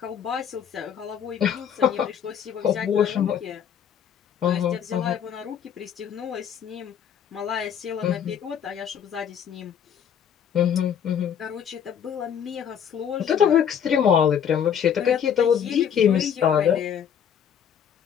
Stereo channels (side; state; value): right; quieter; 8.4 dB